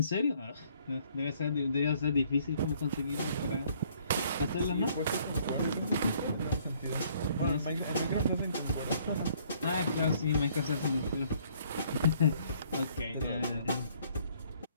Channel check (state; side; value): inverted; both; correlation -0.63